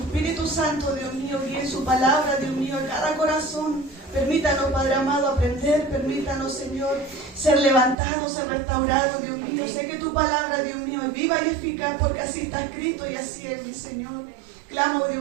Santo, Dios mío, guíe su palabra, Dios mío, a cada corazón. Permítanos, Padre amado, aprender. Permítanos, Señor, ser levantados, ser restaurados, Dios mío. Sé que tu palabra, Dios mío, es viva y eficaz, porque así está escrito y así es, mi Señor. Clamo,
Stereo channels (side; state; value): left; drops out; at 8.0 s